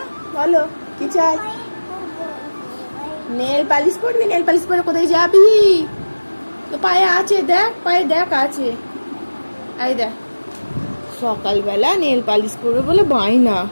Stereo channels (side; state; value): both; inverted; correlation -1.00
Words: বলো, কি চাই? নেল পালিশ করবি? নেল পালিশ করে কোথায় যাবি? তো পায়ে আছে, দেখ পায়ে দেখ আছে। এই দেখ, সকালবেলা নেল পালিশ করবে বলে বায়না।